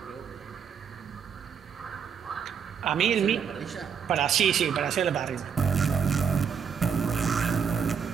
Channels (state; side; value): quieter; left; 7.2 dB